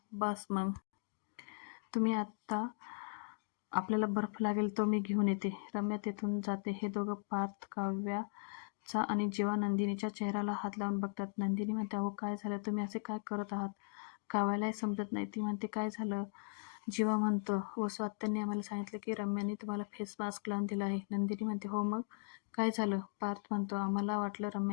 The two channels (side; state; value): right; silent; digital silence